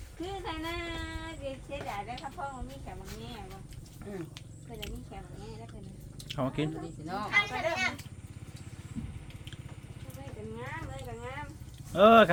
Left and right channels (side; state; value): both; identical; correlation 1.00